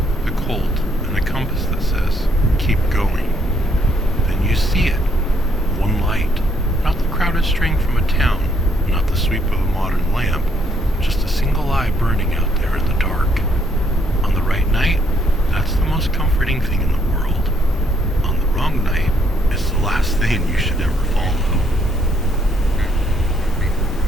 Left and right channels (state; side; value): normal; both; correlation 0.69